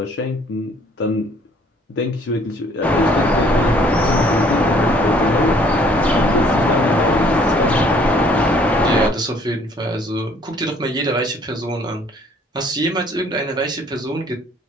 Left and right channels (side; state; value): both; normal; correlation 0.59